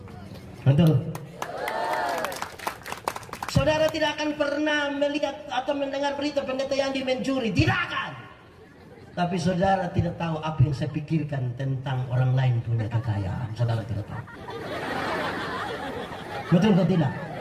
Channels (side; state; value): both; identical; correlation 1.00